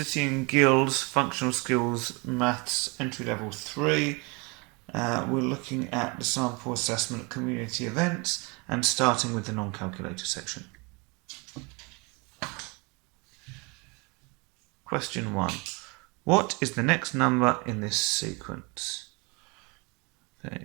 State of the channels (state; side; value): quieter; left; 29.2 dB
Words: and Guilds Functional Skills Maths Entry Level 3. We're looking at the sample assessment community events and starting with the non-calculator section. Question 1. What is the next number in this sequence?